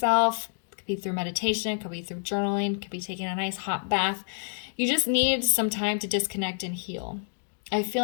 Be through meditation, could be through journaling, could be taking a nice hot bath. You just need some time to disconnect and heal. I feel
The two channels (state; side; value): silent; right; 59 dB below the other